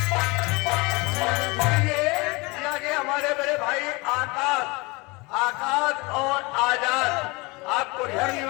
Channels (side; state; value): right; quieter; 25.5 dB